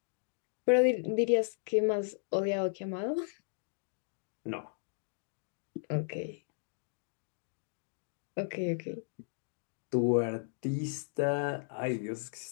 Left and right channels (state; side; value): silent; right; digital silence